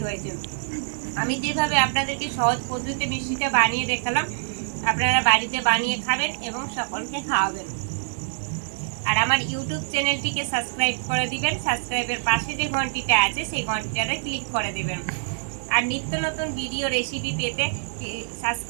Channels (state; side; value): silent; left; 62 dB below the other